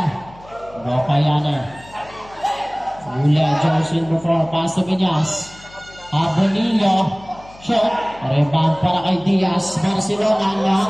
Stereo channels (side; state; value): left; noise; hum, 23 dB below the sound